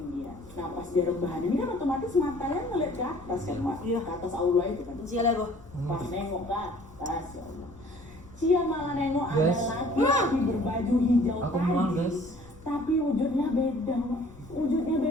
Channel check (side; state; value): left; noise; rumble, 21 dB below the sound